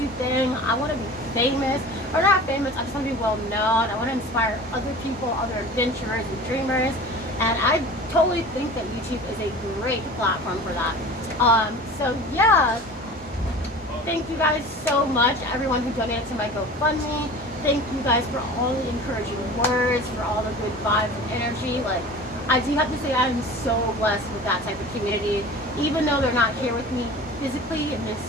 thing. I want to be famous, or not famous, I just want to be well known. I want to inspire other people, other adventurers and dreamers, and I totally think that YouTube is a great platform for that. So yeah, thank you guys so much, everyone who donated to my GoFundMe. Thank you guys for all the encouraging words, for all the good vibes and energy. Like, I do have to say I am so blessed with that type of community. Even though they're not here with me physically in this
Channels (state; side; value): normal; both; correlation 0.39